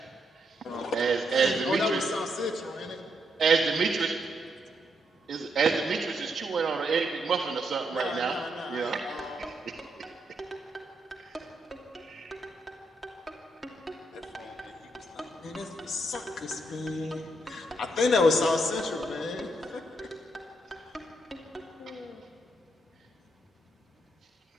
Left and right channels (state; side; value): normal; both; correlation 0.78